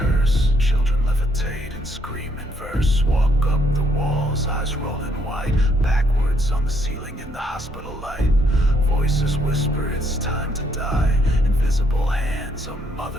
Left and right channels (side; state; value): both; normal; correlation 0.71